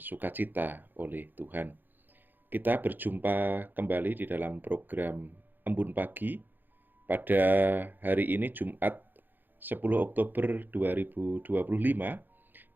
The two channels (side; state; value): left; late; 0.090 ms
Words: sukacita oleh Tuhan. Kita berjumpa kembali di dalam program Embun Pagi pada hari ini Jumat 10 Oktober 2025